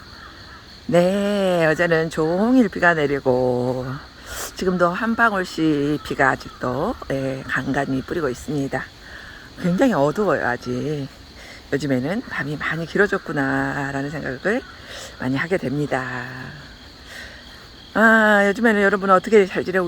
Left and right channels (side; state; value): both; identical; correlation 1.00